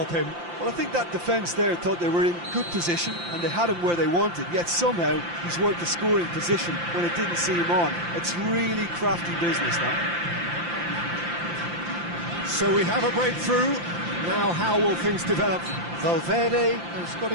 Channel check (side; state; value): left; late; 5.8 ms